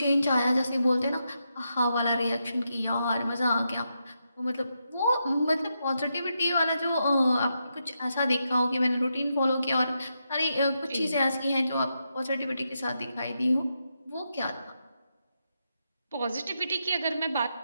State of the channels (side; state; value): both; inverted; correlation -0.84